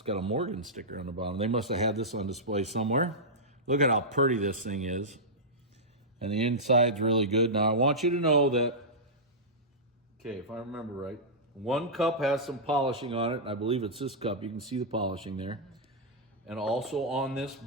got a Morgan sticker on the bottom. They must have had this on display somewhere. Look at how pretty this thing is. And the inside's really good. Now I want you to know that, okay, if I remember right, 1 cup has some polishing on it, and I believe it's this cup. You can see the polishing there. And also on this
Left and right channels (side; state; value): both; normal; correlation -0.11